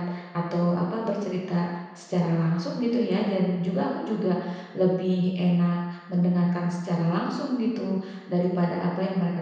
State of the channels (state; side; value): identical; both; correlation 1.00